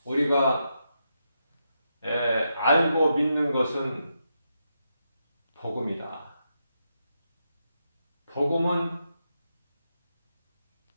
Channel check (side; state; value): both; inverted; correlation -0.84